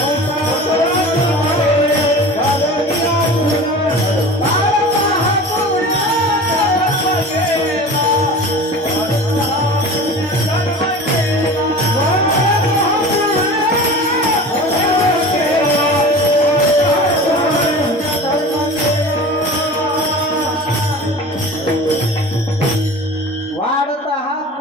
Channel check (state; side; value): normal; both; correlation 0.37